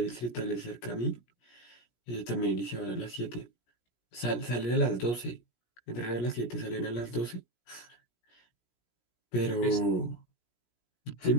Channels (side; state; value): right; late; 17 ms